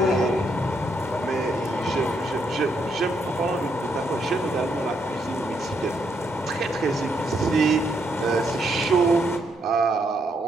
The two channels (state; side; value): normal; both; correlation 0.76